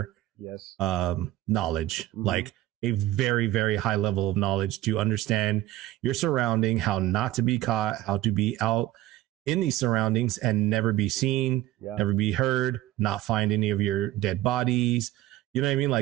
knowledge, like a very, very high level of knowledge to understand your surrounding, how not to be caught, how to be out in these surroundings and never be seen, never be heard, not find any of your dead bodies. You know what I mean?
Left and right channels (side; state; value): left; quieter; 15.1 dB